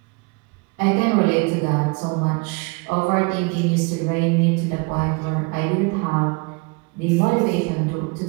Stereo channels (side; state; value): left; quieter; 29.3 dB